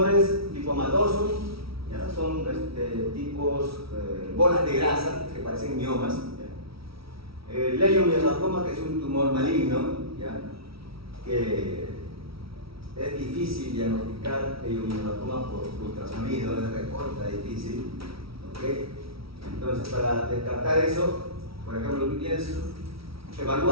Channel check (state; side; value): late; left; 0.75 ms